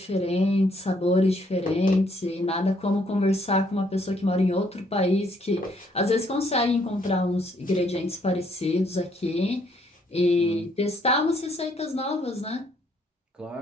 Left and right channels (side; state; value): both; normal; correlation 0.68